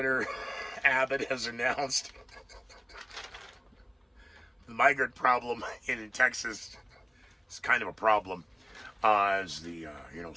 Abbott has announced the migrant problem in Texas is kind of a problem. As the,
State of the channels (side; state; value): both; identical; correlation 1.00